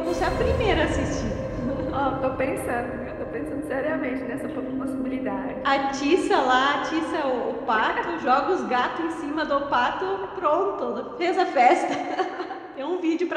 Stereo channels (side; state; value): both; identical; correlation 1.00